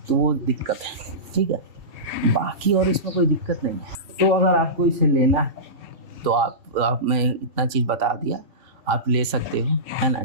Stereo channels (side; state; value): left; late; 3.2 ms